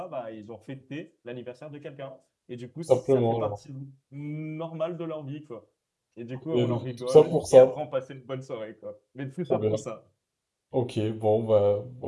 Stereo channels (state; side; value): identical; both; correlation 1.00